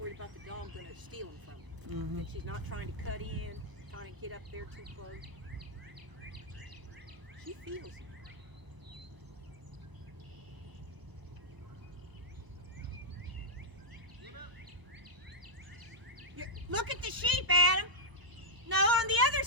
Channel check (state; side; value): late; left; 1.0 ms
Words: about the dog going to steal him from me. Mm-hmm. That she's not trying to cut in, trying to get up there too close. She feels it. Look at the sheep, Adam. No, on the other